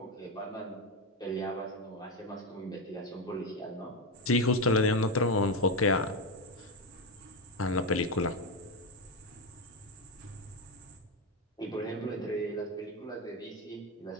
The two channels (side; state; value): both; normal; correlation 0.11